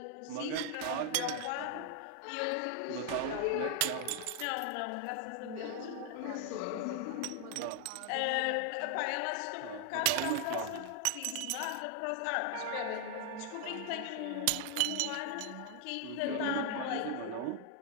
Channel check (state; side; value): different; both; correlation 0.00